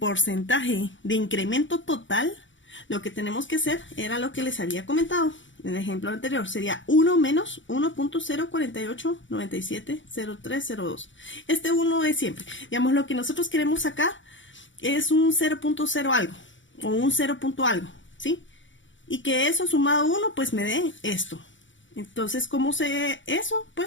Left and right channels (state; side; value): late; right; 0.55 ms